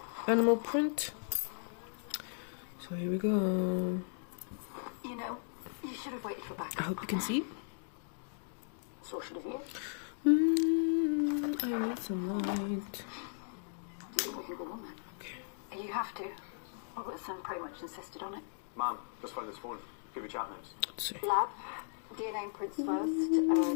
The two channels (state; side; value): silent; right; digital silence